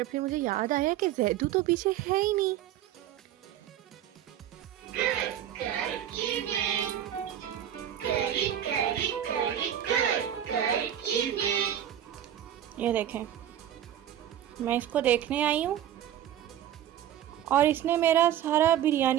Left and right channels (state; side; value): quieter; left; 11.0 dB